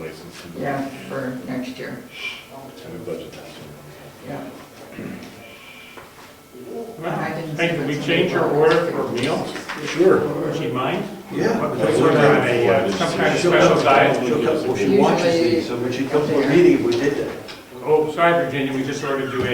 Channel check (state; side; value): identical; both; correlation 1.00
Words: yeah, for next year, And we budget that. yeah. Well, hey, can we change your order for meals? Sure. Would she mind? Yeah. Because we're on a, some kind of special diet. Well, she watches these, so when she comes to a meeting, we did that. Oh, sorry, Virginia, we just ordered you